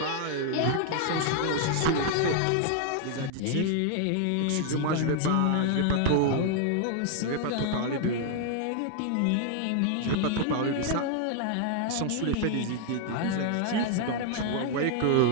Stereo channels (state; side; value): different; both; correlation 0.00